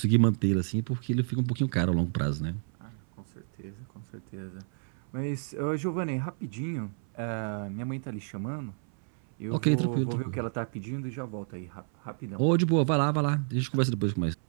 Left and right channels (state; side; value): silent; left; 58 dB below the other